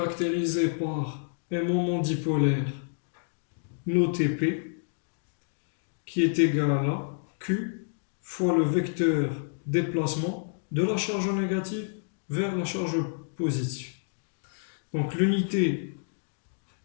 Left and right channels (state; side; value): silent; right; digital silence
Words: par un moment dipolaire noté P qui est égal à Q fois le vecteur déplacement de la charge négative vers la charge positive. Donc l'unité